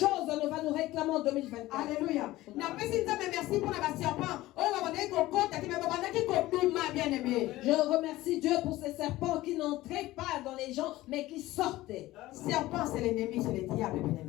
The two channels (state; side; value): quieter; right; 17.2 dB